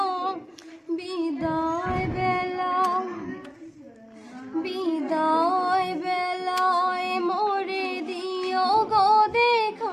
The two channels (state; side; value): identical; both; correlation 1.00